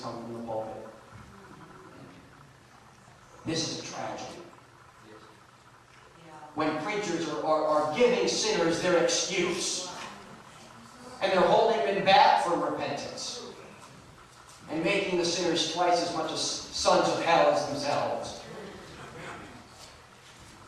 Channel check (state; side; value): identical; both; correlation 1.00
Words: come from the pulpit. This is a tragedy. When preachers are giving sinners their excuse, and they're holding them back from repentance, and making the sinners twice as much as sons of hell as themselves.